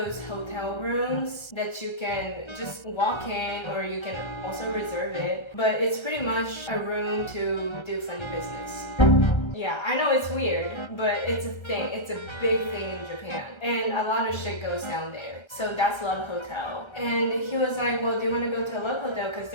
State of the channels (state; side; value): late; right; 1.3 ms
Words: hotel rooms that you can just walk in or you can also reserve it, but it's pretty much a room to do funny business. Yeah, I know it's weird, but it's a thing. It's a big thing in Japan. And a lot of shit goes down there. So that's Love Hotel. And he was like, well, do you want to go to a Love Hotel? Because